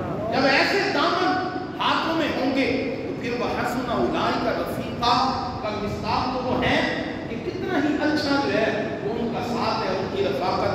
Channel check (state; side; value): identical; both; correlation 1.00